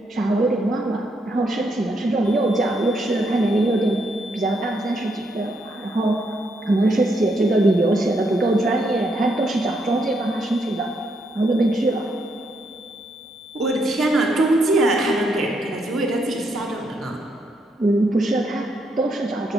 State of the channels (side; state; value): both; normal; correlation 0.77